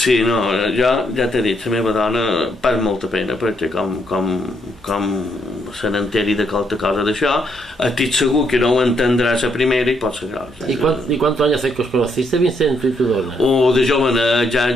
no, jo ja t'he dit, la meva dona pas molta pena, perquè com se n'enteri de qualque cosa d'això, estic segur que no ho entendrà la primera i pot ser gros. ¿Y cuántos años hace que os conociste, Vicent, tu y tu dona? De jovenet,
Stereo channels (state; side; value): normal; both; correlation 0.74